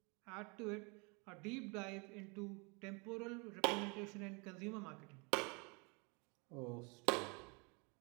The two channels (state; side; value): quieter; left; 31.4 dB